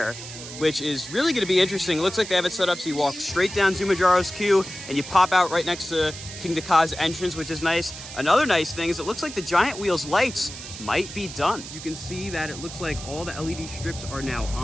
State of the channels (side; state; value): right; noise; hiss, 12 dB below the sound